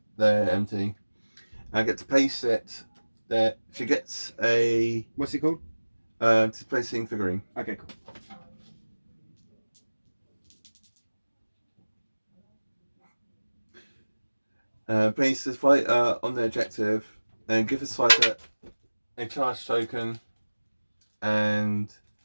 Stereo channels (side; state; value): both; inverted; correlation -1.00